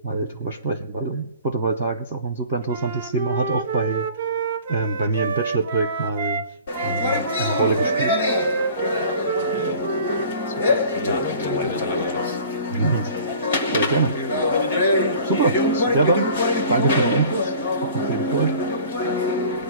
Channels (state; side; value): inverted; both; correlation -0.46